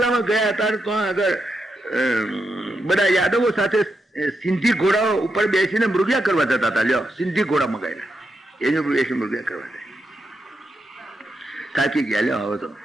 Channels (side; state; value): both; normal; correlation 0.85